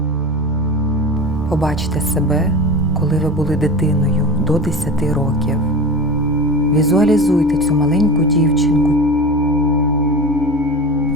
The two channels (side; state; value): both; normal; correlation 0.30